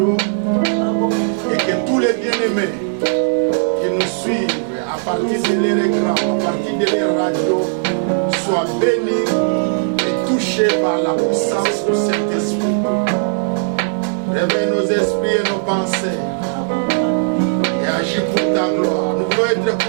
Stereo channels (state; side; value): silent; left; digital silence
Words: et que tous les bien-aimés qui nous suivent à partir de leur écran, à partir de leur radio, soient bénis et touchés par la puissance du Saint-Esprit. Réveille nos esprits et nos pensées et agis pour ta gloire. Nous voulons être